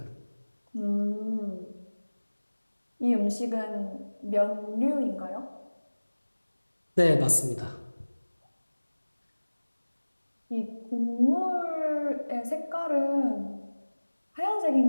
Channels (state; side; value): inverted; both; correlation -1.00